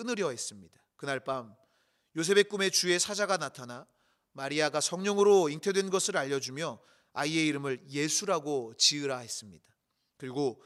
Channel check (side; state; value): both; identical; correlation 1.00